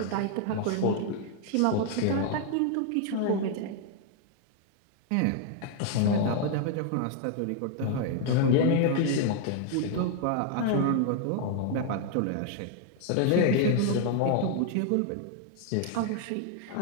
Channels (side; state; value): both; different; correlation 0.00